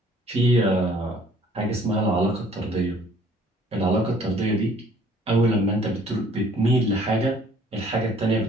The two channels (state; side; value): normal; both; correlation 0.57